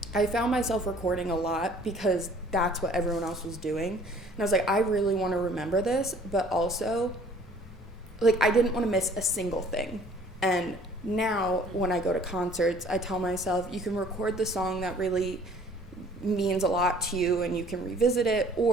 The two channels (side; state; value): both; normal; correlation 0.54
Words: I found myself recording a lot because that's what everyone else was doing. And I was like, I really want to remember this, but also, like, I didn't want to miss a single thing. And now when I go to concerts, I tell myself, you can record the song that really means a lot to you and you can revisit it,